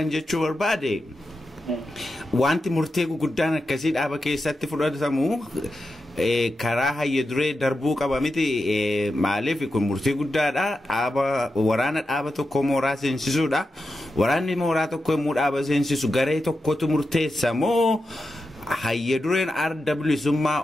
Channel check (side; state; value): both; normal; correlation 0.89